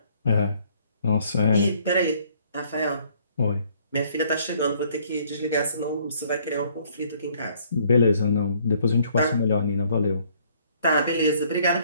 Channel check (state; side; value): inverted; both; correlation -0.63